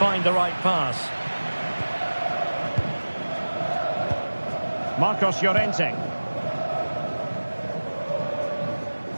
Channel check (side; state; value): both; inverted; correlation -1.00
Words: the right pass? Marcos Llorente.